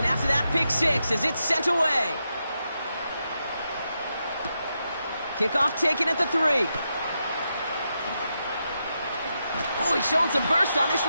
after that pick 6 as it's sent away. Kickoff taken at the 3. Oh, he's showing some burst on this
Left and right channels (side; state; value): both; inverted; correlation -0.85